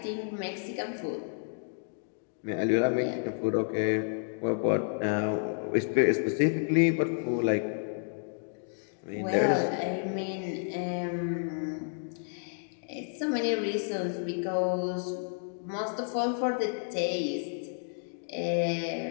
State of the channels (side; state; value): right; silent; digital silence